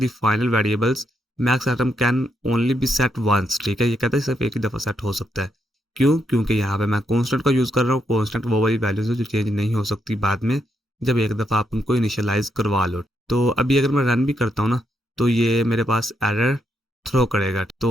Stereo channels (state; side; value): normal; both; correlation 0.79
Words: final variables max item can only be set once, ठीक है। ये कहता है सिर्फ एक ही दफा सेट हो सकता है। क्यों, क्योंकि यहाँ पे मैं कॉन्स्टेंट का यूज कर रहा हूँ। कॉन्स्टेंट वो वाली वैल्यूज है जो चेंज नहीं हो सकती बाद में, जब एक दफा आप उनको इनिशियलाइज करवा लो। तो अभी अगर मैं रन भी करता हूँ ना तो ये मेरे पास एरर थ्रो करेगा।